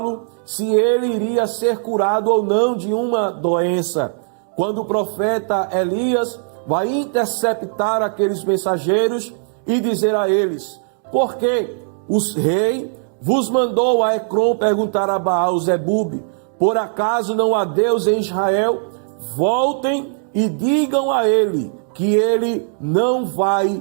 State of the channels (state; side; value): silent; left; digital silence